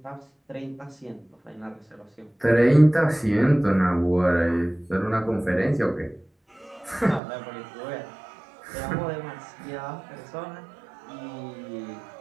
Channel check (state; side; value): drops out; left; at 7.2 s